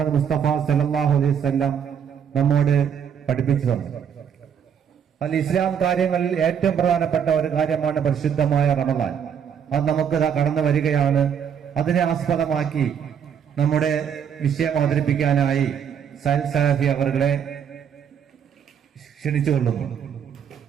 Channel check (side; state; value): left; quieter; 7.9 dB